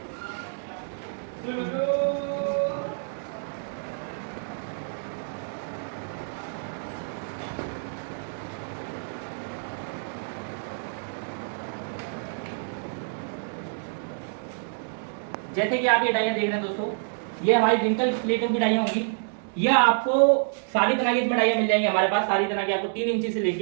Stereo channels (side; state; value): left; silent; digital silence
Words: जैसे कि आप ये डाइयाँ देख रहे हैं दोस्तों, ये हमारी रिंकल प्लेटों की डाइयाँ होंगी। यह आपको सारी तरह की इसमें डाइयाँ मिल जाएंगी हमारे पास, सारी तरह की आपको 3 इंची से